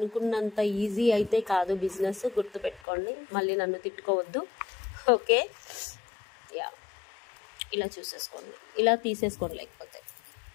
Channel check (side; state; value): right; drops out; at 2.8 s